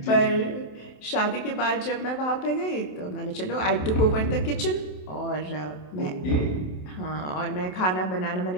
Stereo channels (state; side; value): late; right; 27 ms